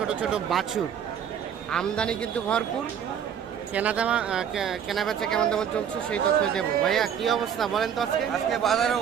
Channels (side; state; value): left; quieter; 8.5 dB